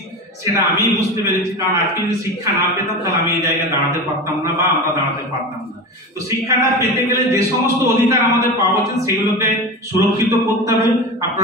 সেটা আমি বুঝতে পেরেছি, কারণ আজকে যদি শিক্ষা না পেতাম তাহলে আমি এই জায়গায় দাঁড়াতে পারতাম না বা আমরা দাঁড়াতে পারতাম না। তো শিক্ষাটা পেতে গেলে যে সমস্ত অধিকার আমাদের পাওয়া উচিত সেগুলোকে সুরক্ষিত করতে হবে।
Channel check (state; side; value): normal; both; correlation 0.27